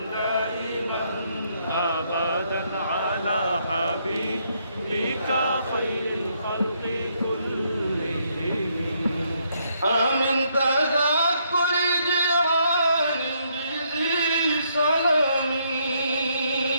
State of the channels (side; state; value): both; inverted; correlation -0.73